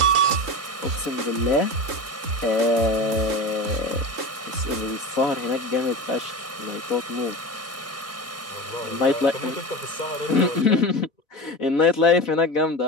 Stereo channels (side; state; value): both; normal; correlation 0.27